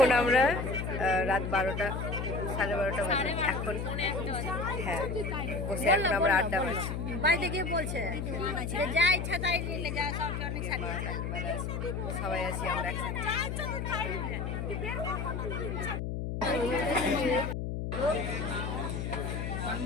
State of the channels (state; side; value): noise; left; hum, 3 dB below the sound